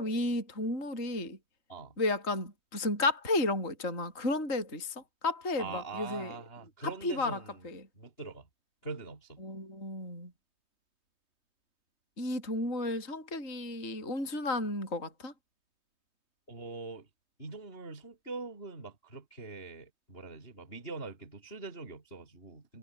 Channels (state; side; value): late; right; 3.2 ms